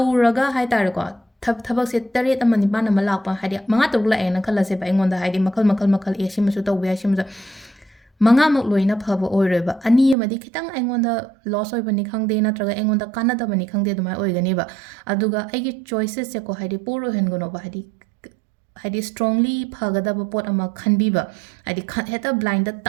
ꯍꯥꯏꯇꯥꯔꯦꯀꯣ ꯊꯕꯛꯁꯦ 7-9 ꯂꯥꯛꯄ ꯍꯥꯏꯗꯤ 5-6 ꯂꯥꯛꯑꯦꯅ ꯈꯜꯂꯁꯦꯕ ꯑꯩꯉꯣꯟꯗ ꯍꯥꯏꯗꯤ ꯃꯈꯜ ꯁꯤꯃꯁꯨ ꯇꯧꯕ ꯌꯥꯏ ꯁꯤꯃꯁꯨ 5ꯃꯛ ꯂꯣꯏꯅ ꯐꯕ ꯑꯣꯏꯔꯣꯏꯕ 2 ꯑꯃꯗꯤ ꯈꯤꯇꯪ ꯑꯩꯉꯣꯟꯗ ꯂꯣꯁ ꯑꯣꯏꯕꯅꯤ ꯈꯪꯗꯦ ꯅꯠꯇ꯭ꯔꯒ ꯑꯩꯉꯣꯟꯗ ꯀꯥꯟꯅꯗꯕꯅꯤ ꯈꯪꯗꯦ ꯑꯗꯨꯃꯥꯏꯅ ꯑꯣꯏꯒꯅꯦꯕ ꯑꯗꯨꯒ ꯑꯩꯒꯤ ꯆꯣꯏꯁꯦꯁꯁꯦꯀꯣ ꯍꯥꯏꯗꯤ ꯄꯣꯔ ꯑꯣꯏꯍꯟꯒꯅꯣꯕ ꯍꯥꯏꯗꯤ ꯁ꯭ꯇꯔꯣꯡꯂꯤ ꯐꯒꯗꯕ ꯄꯣꯠ ꯑꯃ ꯈꯟꯕꯤꯕ ꯍꯥꯏꯗꯤ ꯍꯦꯛꯇ ꯕ꯭ꯂꯥꯏꯟꯗ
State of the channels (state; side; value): drops out; left; at 10.2 s